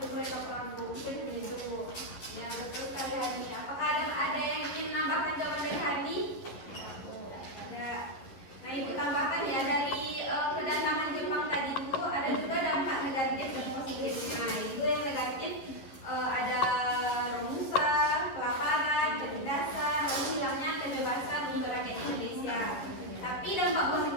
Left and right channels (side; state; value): right; late; 11 ms